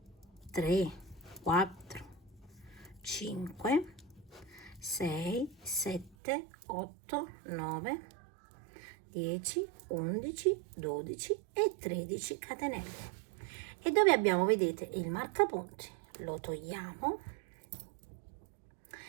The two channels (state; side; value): drops out; left; at 6.2 s